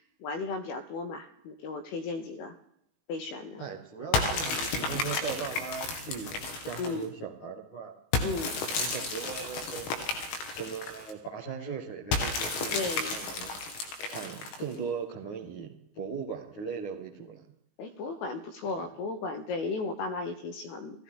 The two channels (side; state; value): right; late; 19 ms